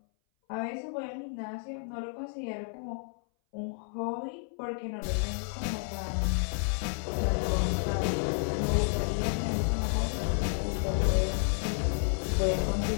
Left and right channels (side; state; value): right; silent; 57 dB below the other